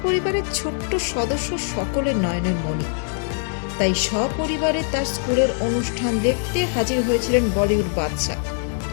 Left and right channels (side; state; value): right; silent; 56 dB below the other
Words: পরিবারের ছোট্ট সদস্য সকলের নয়নের মণি। তাই সপরিবারে তার স্কুলের অনুষ্ঠান দেখতে হাজির হয়েছিলেন বলিউড বাদশা।